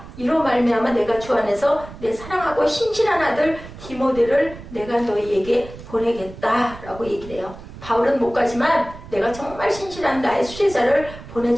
이로 말미암아 내가 주 안에서 내 사랑하고 신실한 아들 디모데를 내가 너희에게 보내겠다라고 얘기를 해요. 바울은 못 가지만 내가 정말 신실한 나의 수제자를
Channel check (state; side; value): noise; right; rumble, 15 dB below the sound